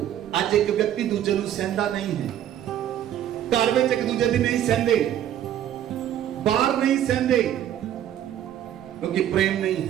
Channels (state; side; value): quieter; left; 11.1 dB